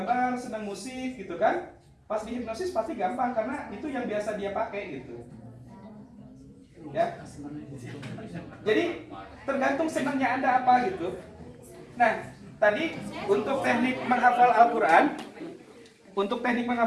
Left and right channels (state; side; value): identical; both; correlation 1.00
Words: senang musik gitu kan, pas dihipnosis pasti gampang karena itu yang biasa dia pakai gitu. Ya. Jadi tergantung senangnya Anda apa gitu. Nah, tadi untuk teknik menghafal Al-Quran,